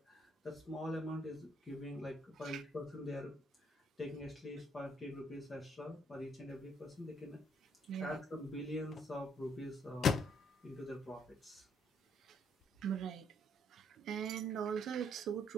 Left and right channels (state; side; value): normal; both; correlation 0.69